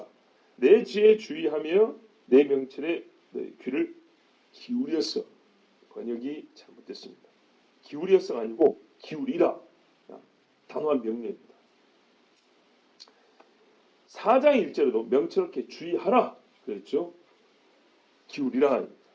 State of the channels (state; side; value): identical; both; correlation 1.00